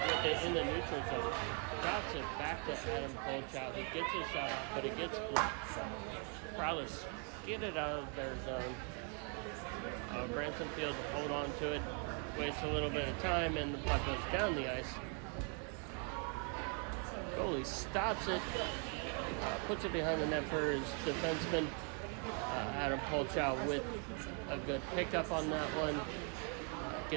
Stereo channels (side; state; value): left; quieter; 39.4 dB